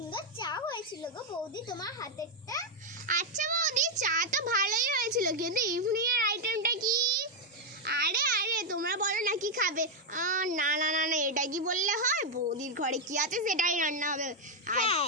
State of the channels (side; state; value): both; normal; correlation 0.01